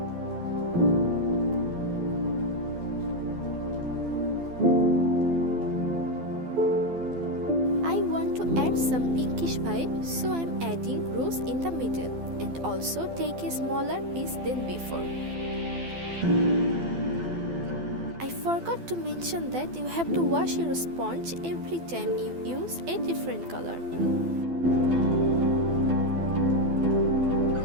Add some pinkish vibe, so I'm adding rose in the middle and also take a smaller piece than before. I forgot to mention that you have to wash your sponge every time you use a different color.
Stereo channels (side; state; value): left; late; 12 ms